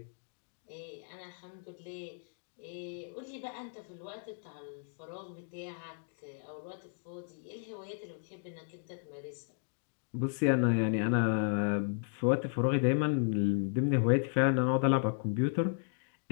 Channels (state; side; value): silent; right; digital silence